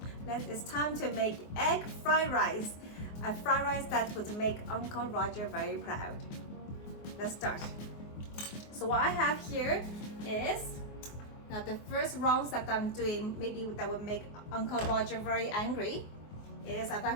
It's time to make egg fried rice, a fried rice that would make Uncle Roger very proud. Let's start. So what I have here is now the first rounds that I'm doing, maybe that would make Uncle Roger very angry, is I've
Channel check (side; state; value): right; late; 24 ms